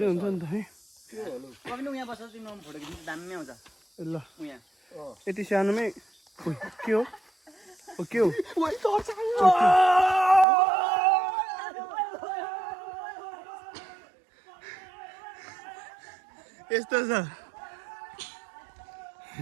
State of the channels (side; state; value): left; drops out; at 10.5 s